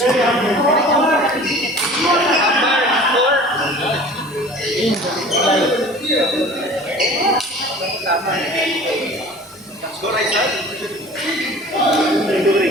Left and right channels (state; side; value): normal; both; correlation 0.43